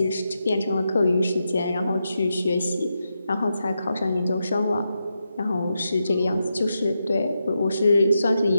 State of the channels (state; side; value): inverted; both; correlation -0.86